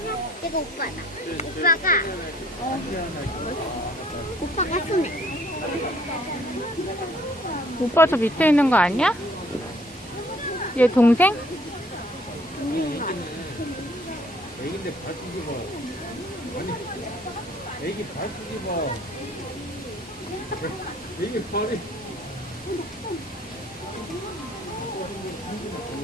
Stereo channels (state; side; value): normal; both; correlation 0.60